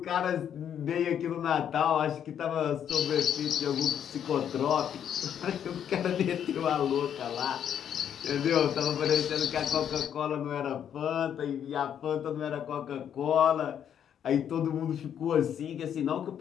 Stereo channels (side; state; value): right; quieter; 9.1 dB